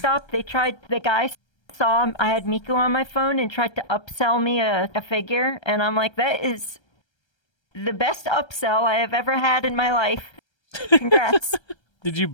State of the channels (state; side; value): late; right; 1.3 ms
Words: the guy saw I had Miku on my phone and tried to upsell me a figure, and I'm like, that is the best upsell I have ever had in my life. Congrats. Did you